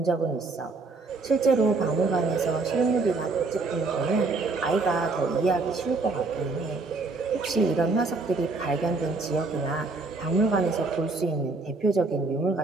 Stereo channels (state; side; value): quieter; left; 3.7 dB